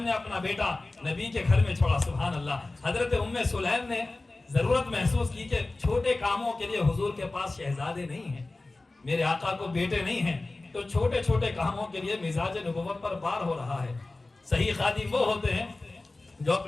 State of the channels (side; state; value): right; quieter; 3.1 dB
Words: نے اپنا بیٹا نبی کے گھر میں چھوڑا، سبحان اللہ. حضرت ام سلیم نے ضرورت محسوس کی کہ چھوٹے کاموں کے لیے حضور کے پاس شہزادے نہیں ہیں، میرے آقا کو بیٹے نہیں ہیں، تو چھوٹے چھوٹے کاموں کے لیے مزاج نبوت پر بار ہو رہا ہے. صحیح خادم وہ ہوتے ہیں جو